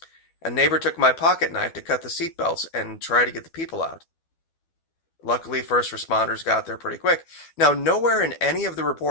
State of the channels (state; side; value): late; right; 12 ms